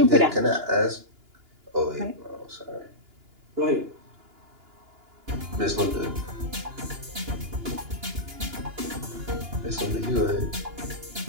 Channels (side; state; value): left; late; 2.9 ms